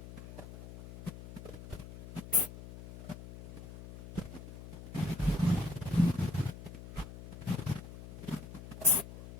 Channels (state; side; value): noise; left; hum, 14 dB below the sound